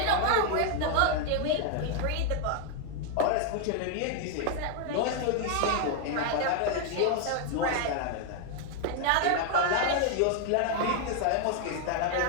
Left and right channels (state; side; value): different; both; correlation 0.00